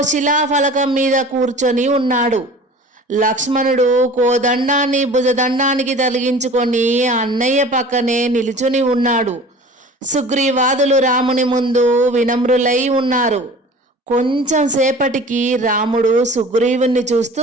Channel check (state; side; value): normal; both; correlation 0.42